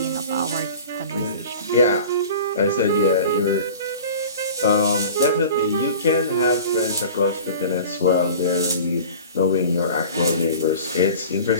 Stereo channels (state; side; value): inverted; both; correlation -0.39